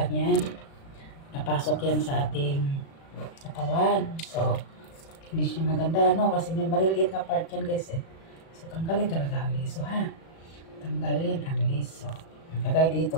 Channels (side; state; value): right; late; 36 ms